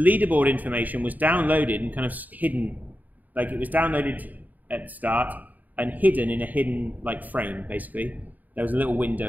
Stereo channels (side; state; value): left; late; 0.081 ms